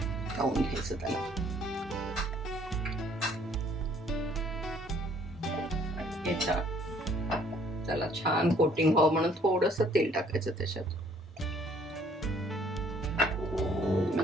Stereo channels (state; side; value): normal; both; correlation 0.61